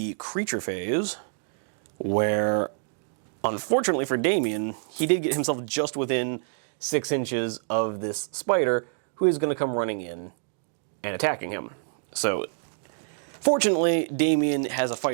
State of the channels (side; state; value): left; silent; digital silence